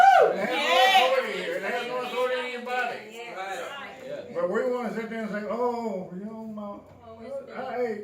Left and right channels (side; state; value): both; identical; correlation 1.00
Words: It has no authority here. It has no authority in your body. Yes. Right. But we want to sit there and say, oh, you know, I